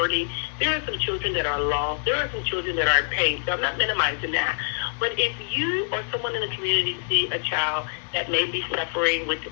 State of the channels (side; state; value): right; silent; 62 dB below the other